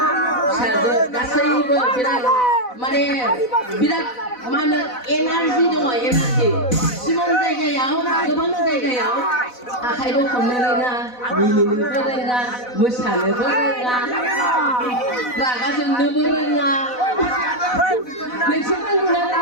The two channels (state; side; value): late; right; 4.0 ms